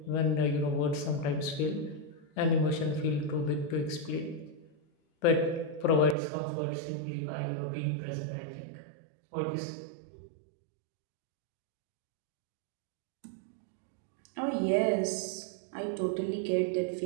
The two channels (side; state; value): left; drops out; at 6.2 s